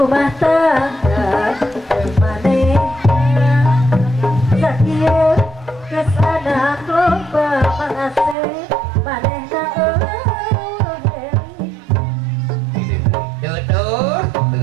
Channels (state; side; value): drops out; left; at 8.3 s